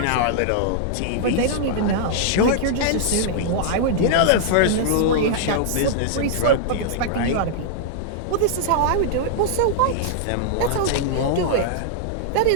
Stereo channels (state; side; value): different; both; correlation -0.01